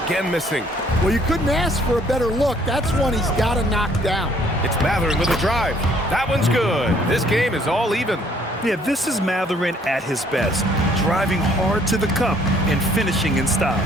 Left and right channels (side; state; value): both; normal; correlation 0.62